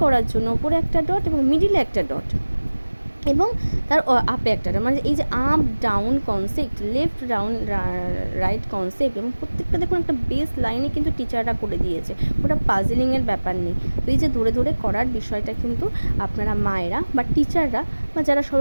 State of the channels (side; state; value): both; inverted; correlation -1.00